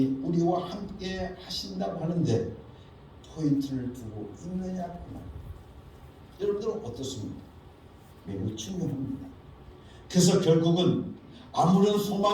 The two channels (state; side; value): identical; both; correlation 1.00